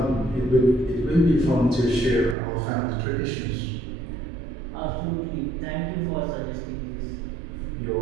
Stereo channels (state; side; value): drops out; left; at 2.4 s